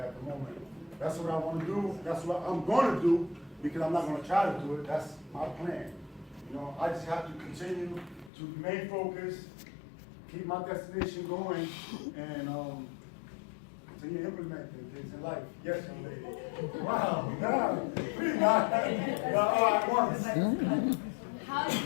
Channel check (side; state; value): right; drops out; at 8.3 s